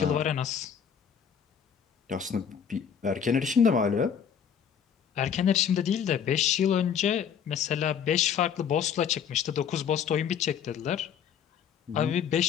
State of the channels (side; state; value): right; quieter; 7.9 dB